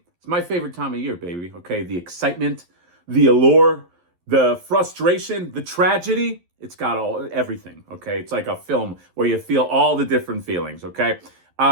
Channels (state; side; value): late; left; 11 ms